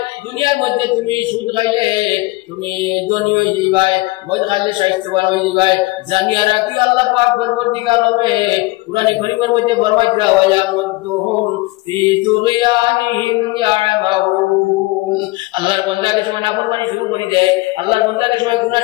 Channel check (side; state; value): right; quieter; 21.7 dB